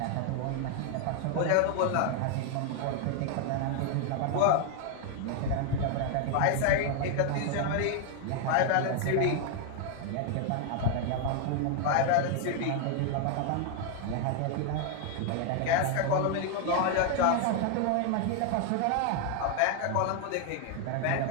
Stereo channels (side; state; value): both; different; correlation 0.00